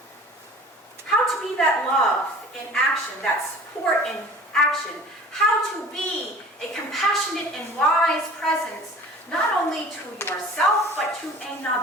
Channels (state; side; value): normal; both; correlation 0.43